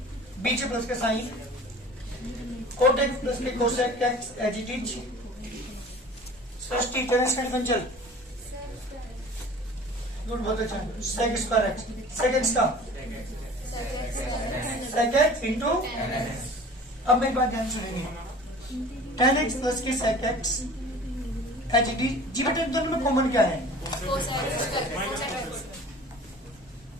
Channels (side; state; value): both; normal; correlation 0.43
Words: बीच में प्लस का साइन, कोट एक्स प्लस के cosec x as it is, Srishti Terence का डिफरेंशियल गुड, बहुत अच्छा, sec square x, sec x का सेक एक्स इंटू, अब मेरी बात ध्यान सुनेंगे, टेन एक्स प्लस के सेक एक्स एच डी जी बेटा, दोनों में कॉमन क्या है?